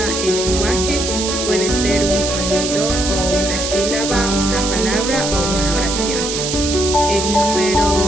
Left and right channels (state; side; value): noise; right; hiss, 3 dB below the sound